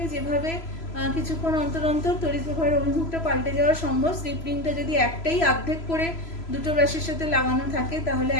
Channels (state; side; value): late; right; 3.0 ms